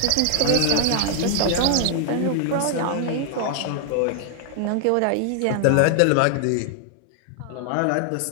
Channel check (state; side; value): different; both; correlation 0.00